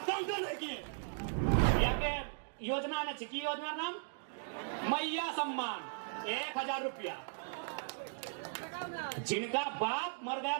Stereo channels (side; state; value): left; silent; digital silence